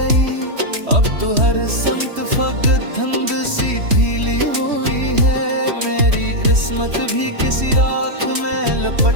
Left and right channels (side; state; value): left; late; 3.1 ms